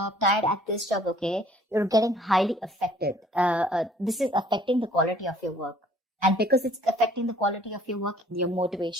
tired at this job, okay, you're getting highly affected. This is affecting the quality of your work. And because it's affecting the quality of your work, your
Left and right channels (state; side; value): normal; both; correlation 0.57